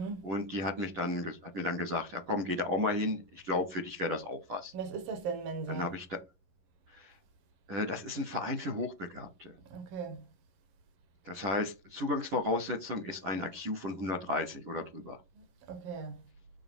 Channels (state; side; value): late; left; 11 ms